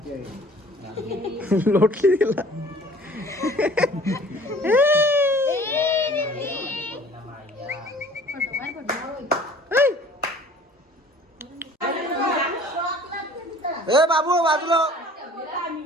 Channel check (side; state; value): both; normal; correlation 0.50